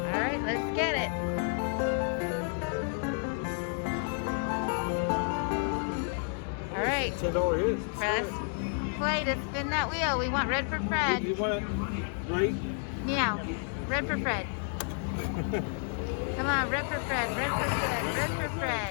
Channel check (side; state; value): right; silent; 56 dB below the other